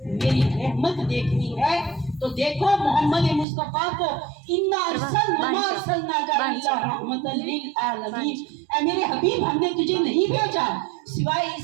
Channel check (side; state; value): left; drops out; at 3.5 s